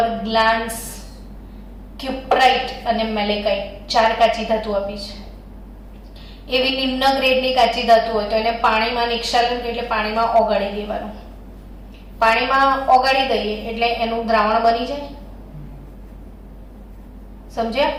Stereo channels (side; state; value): both; identical; correlation 1.00